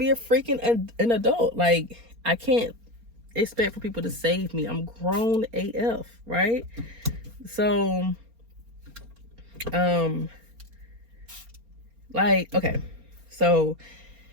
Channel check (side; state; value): left; late; 4.3 ms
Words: a freaking an adult. Like, I can't expect for people to save me. I'm grown AF, right? So, like, okay. So,